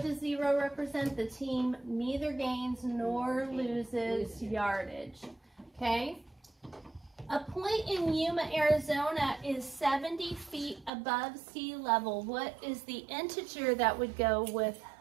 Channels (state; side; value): drops out; left; at 10.9 s